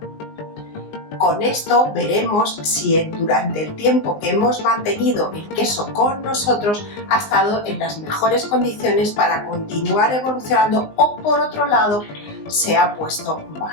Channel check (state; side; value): late; right; 19 ms